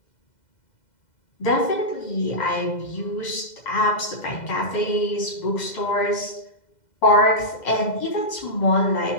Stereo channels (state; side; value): late; right; 2.0 ms